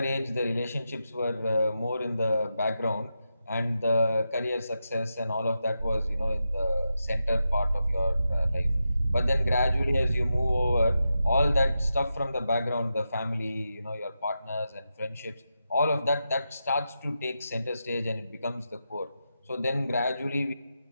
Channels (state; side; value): inverted; both; correlation -0.88